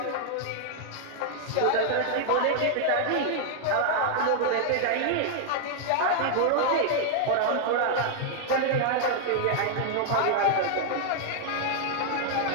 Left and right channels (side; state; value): both; different; correlation 0.00